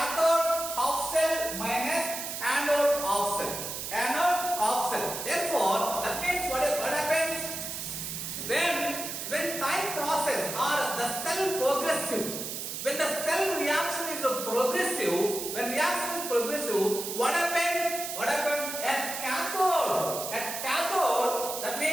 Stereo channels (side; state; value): right; noise; hiss, 6 dB below the sound